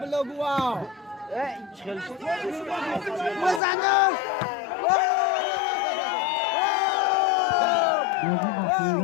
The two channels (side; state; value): right; drops out; at 3.6 s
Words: بلگوا. بزنم. Bozu